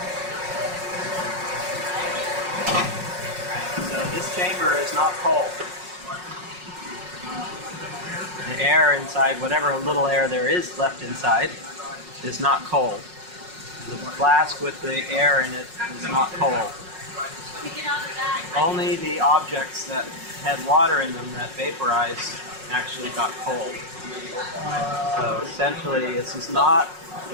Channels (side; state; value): left; late; 5.5 ms